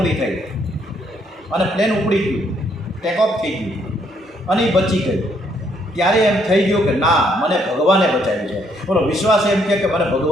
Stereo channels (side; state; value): both; normal; correlation 0.70